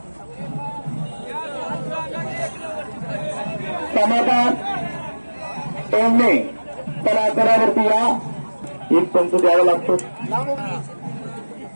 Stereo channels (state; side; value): inverted; both; correlation -1.00